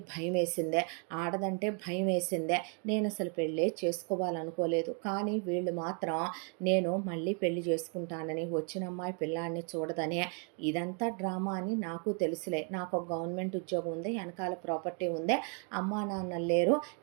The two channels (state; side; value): quieter; left; 40.0 dB